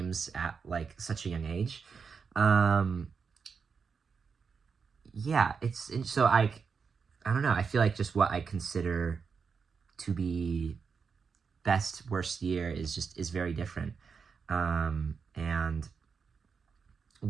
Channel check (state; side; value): quieter; left; 5.7 dB